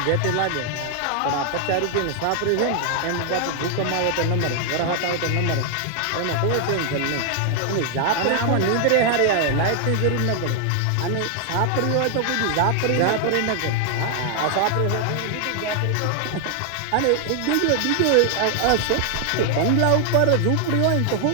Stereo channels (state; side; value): different; both; correlation 0.00